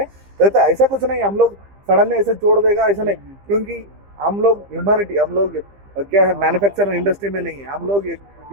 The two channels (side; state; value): left; late; 15 ms